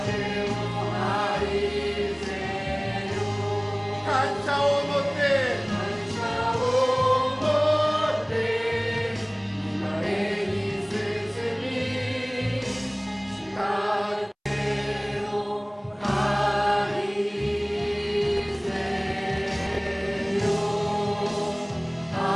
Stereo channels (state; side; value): identical; both; correlation 1.00